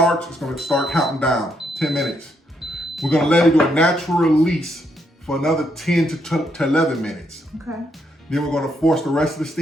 it's gonna start counting down, 10 minutes. We're gonna let it do a natural release for another 10 to 11 minutes. Okay. Then we're gonna force the rest of the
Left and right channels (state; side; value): normal; both; correlation 0.76